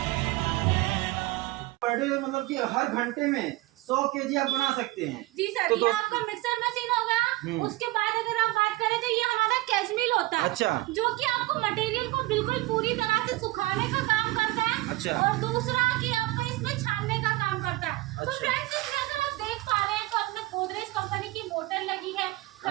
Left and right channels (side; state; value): left; quieter; 19.6 dB